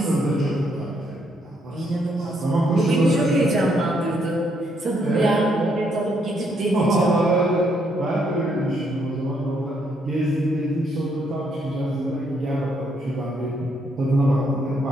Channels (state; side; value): normal; both; correlation 0.73